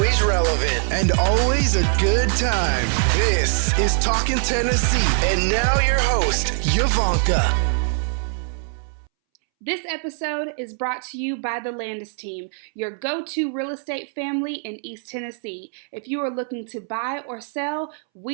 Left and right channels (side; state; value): left; silent; 64 dB below the other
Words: relevant, and always a good time. This is Talkin' Tennessee, and now your host, Yvonnca. This episode is brought to you by the Landes team, your go-to real estate family in East Tennessee. If you are looking to buy or sell,